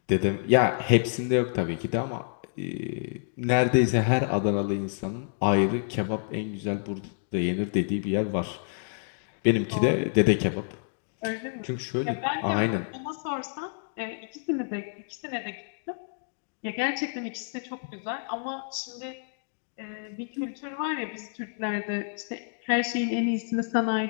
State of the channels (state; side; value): silent; right; digital silence